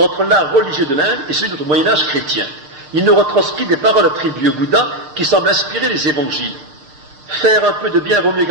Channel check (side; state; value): left; late; 6.6 ms